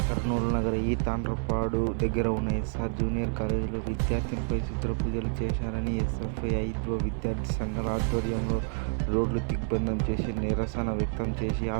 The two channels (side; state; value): left; silent; 56 dB below the other